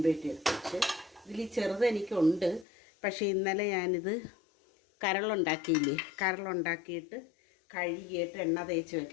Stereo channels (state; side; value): drops out; right; at 2.7 s